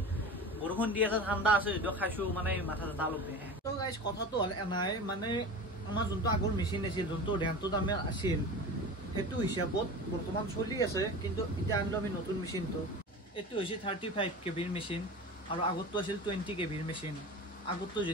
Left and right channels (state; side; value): normal; both; correlation 0.32